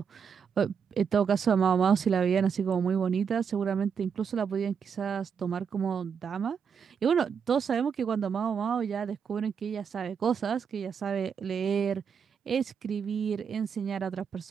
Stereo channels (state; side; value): quieter; left; 6.8 dB